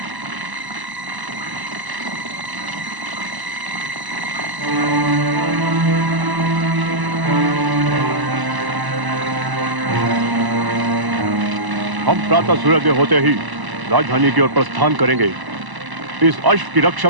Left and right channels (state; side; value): late; left; 1.0 ms